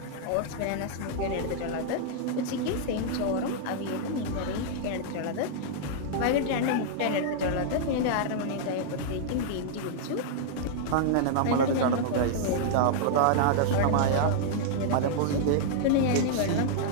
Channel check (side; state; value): both; different; correlation -0.01